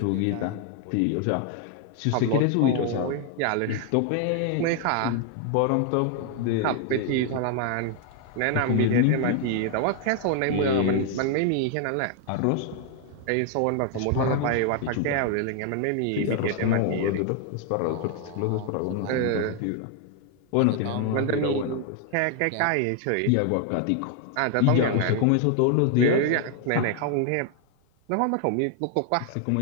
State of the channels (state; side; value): different; both; correlation 0.00